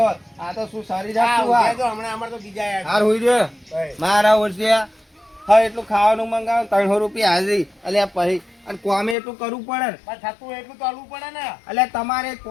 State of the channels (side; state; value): right; drops out; at 9.2 s